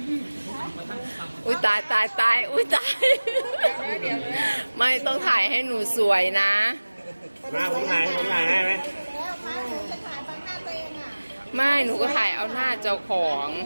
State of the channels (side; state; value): both; inverted; correlation -1.00